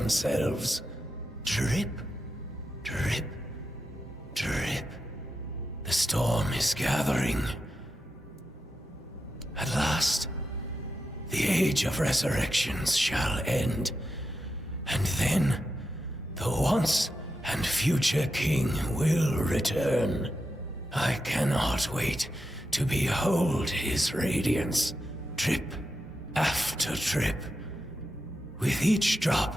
Drip, drip, drip. The storm is gathering. At last, the age of resurrections shall end. And then, the once and future king will return. I cannot wait to behold his radiance, drip after drip. With each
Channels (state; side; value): normal; both; correlation 0.88